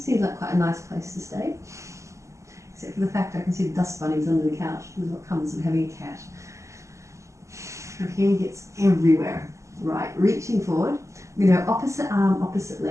seems like quite a nice place to stay. Except for the fact I can see the dust bunnies under the couch. This is what comes with having a cat. Her hair gets everywhere. Right, reaching forward. I'm going to go opposite arm, opposite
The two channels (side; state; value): left; late; 0.15 ms